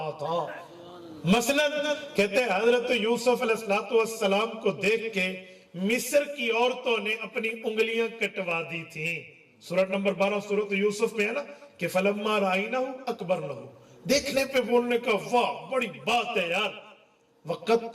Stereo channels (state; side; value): identical; both; correlation 1.00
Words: تھا۔ مثلا کہتے ہیں حضرت یوسف علیہ السلام کو دیکھ کے مصر کی عورتوں نے اپنی انگلیاں کٹوا دی تھیں۔ سورۃ نمبر 12 سورۃ یوسف میں ہے نا کہ فلما رائنہ اکبرنہ، دیکھنے پہ بولنے کا واہ بڑی بات ہے یار،